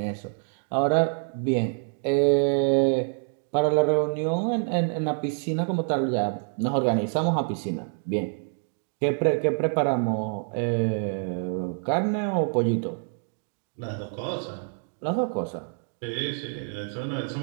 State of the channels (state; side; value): silent; left; 59 dB below the other